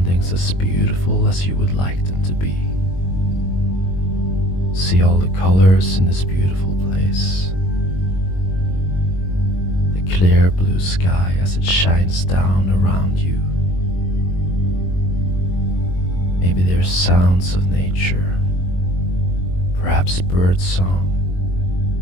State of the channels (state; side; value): late; right; 22 ms